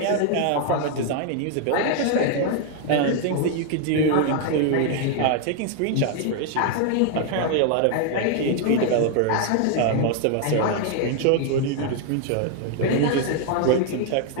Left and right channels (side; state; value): both; different; correlation 0.00